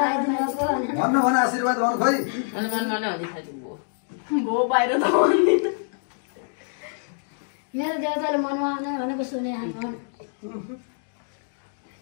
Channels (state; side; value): silent; right; digital silence